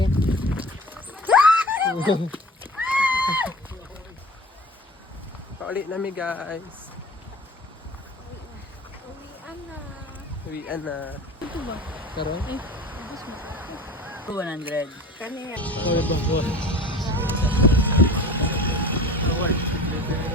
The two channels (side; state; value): both; normal; correlation 0.40